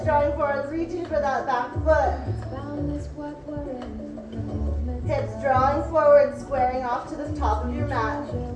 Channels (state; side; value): identical; both; correlation 1.00